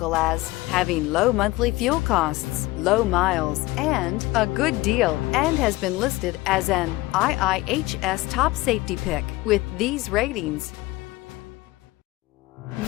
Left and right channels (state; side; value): quieter; right; 19.5 dB